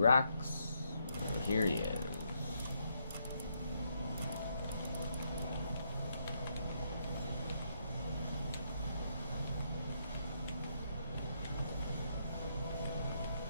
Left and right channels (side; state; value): both; inverted; correlation -0.77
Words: Here he is.